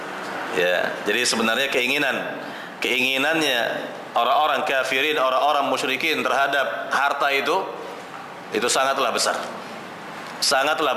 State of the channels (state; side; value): identical; both; correlation 1.00